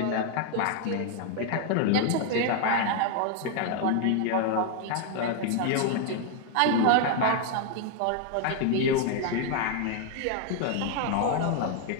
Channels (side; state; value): both; different; correlation 0.01